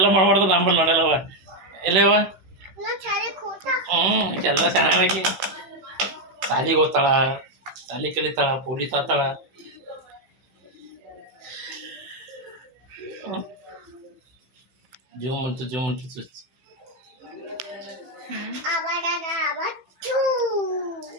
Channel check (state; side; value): late; left; 16 ms